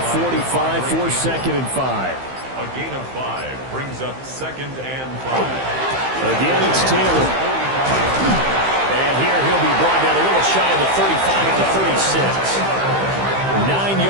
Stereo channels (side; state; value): left; late; 15 ms